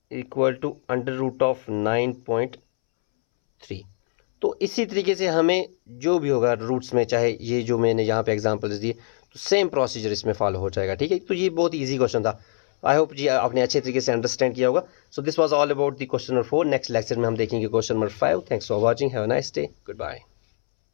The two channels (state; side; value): silent; right; 63 dB below the other